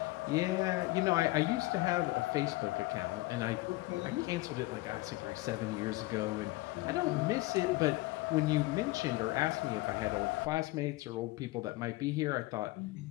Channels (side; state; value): right; quieter; 20.0 dB